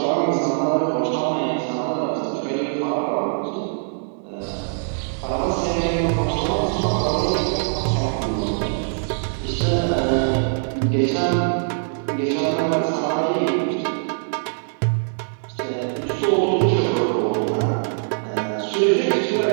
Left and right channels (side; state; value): left; silent; digital silence